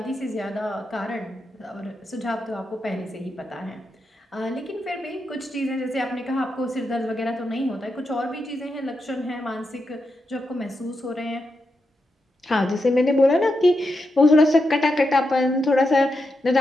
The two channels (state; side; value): normal; both; correlation 0.85